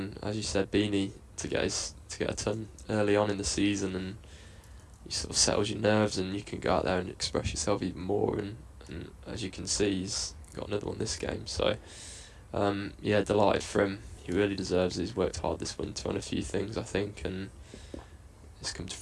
as you said, Beanie to get a ton early on in the season, and you sort of settles your nerves, and you can go out there and express yourself even more. And as you can see, he's got another one this game. So yeah, delighted for him. He really deserves it. He's worked hard this winter on a few things, I think, and it's come to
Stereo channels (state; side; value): identical; both; correlation 1.00